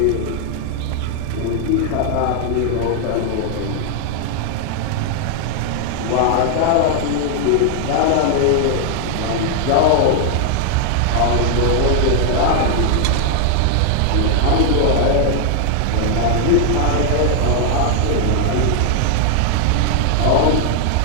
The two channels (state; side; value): different; both; correlation 0.00